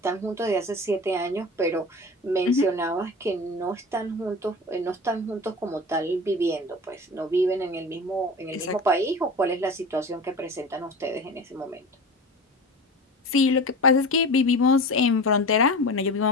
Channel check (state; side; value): normal; both; correlation 0.32